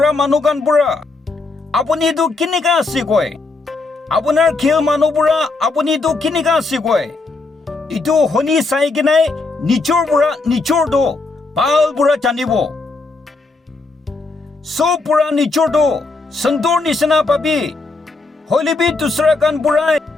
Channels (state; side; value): quieter; right; 3.6 dB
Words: মানুহ গান বুঢ়া আপুনিটো কেনেকা আছে কয় আপোনাৰ খেল মানুহ বুঢ়া আপুনিটো কেনেকা আছে কয় ইটো শুনি চাই কিনাই নিজৰ বুঢ়া নিজৰটো ভাল বুঢ়া জানিব চব বুঢ়া নিজৰটো সন্তৰ নিচিনা পাবি হলেবি দুসৰা গান বুঢ়াই